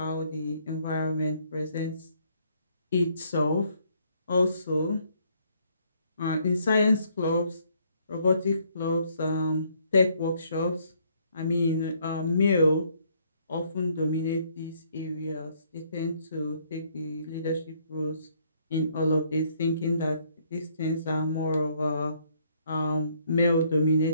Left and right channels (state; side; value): inverted; both; correlation -0.67